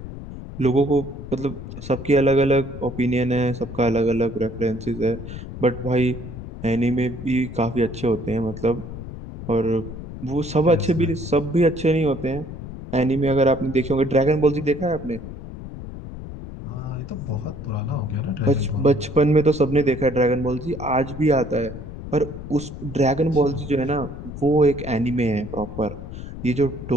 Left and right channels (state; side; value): noise; left; rumble, 11 dB below the sound